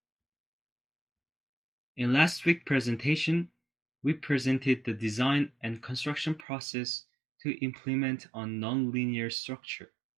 In last week's presentation, we presented the design and construction process to implement a non-linear structure.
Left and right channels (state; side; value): drops out; left; at 6.5 s